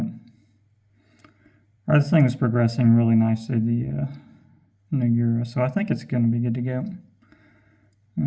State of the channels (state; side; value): identical; both; correlation 1.00